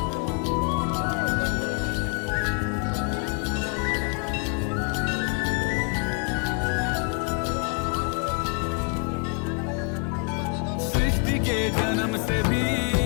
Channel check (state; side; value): quieter; right; 37.1 dB